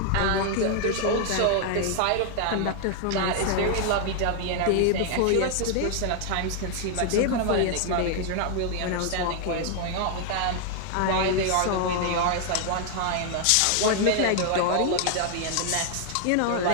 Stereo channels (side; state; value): both; different; correlation 0.00